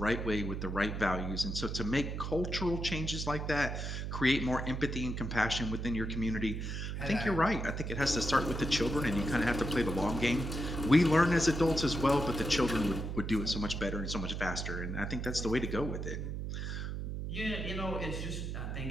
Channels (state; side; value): noise; right; hum, 4 dB below the sound